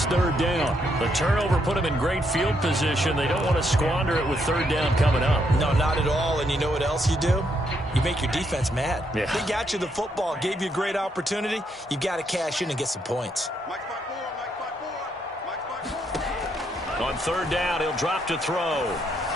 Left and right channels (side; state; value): both; normal; correlation 0.76